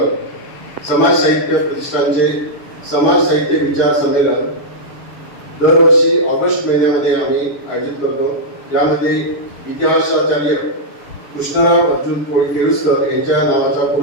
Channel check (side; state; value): right; late; 6.9 ms